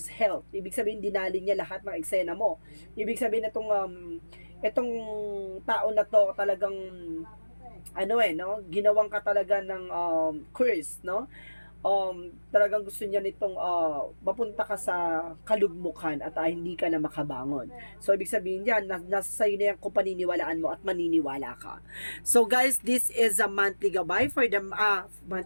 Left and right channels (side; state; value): both; inverted; correlation -1.00